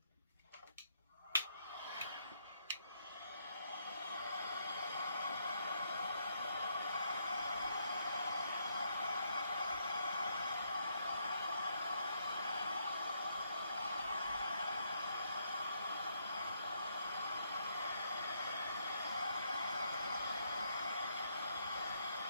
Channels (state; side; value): inverted; both; correlation -0.75